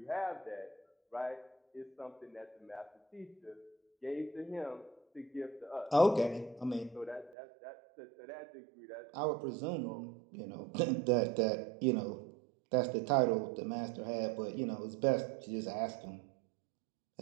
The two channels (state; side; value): drops out; left; at 7.4 s